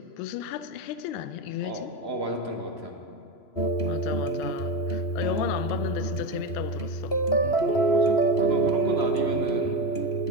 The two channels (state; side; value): late; right; 3.0 ms